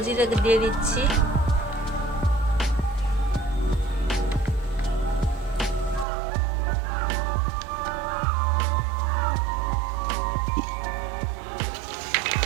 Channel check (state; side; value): drops out; left; at 6.1 s